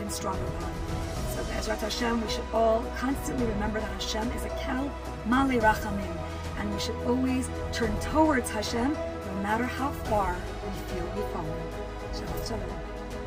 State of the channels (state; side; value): identical; both; correlation 1.00